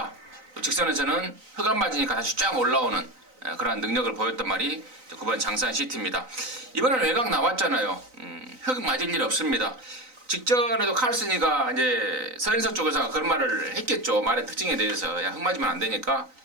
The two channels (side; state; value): left; late; 3.9 ms